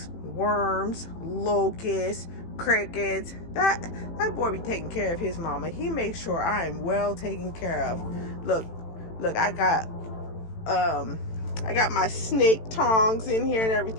worms, locusts, crickets. That boy be taking care of his mama. He makes sure I am well taken care of. Look, I got my snake tongs in here and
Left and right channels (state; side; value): late; right; 18 ms